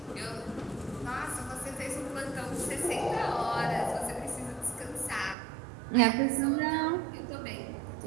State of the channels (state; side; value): drops out; left; at 5.4 s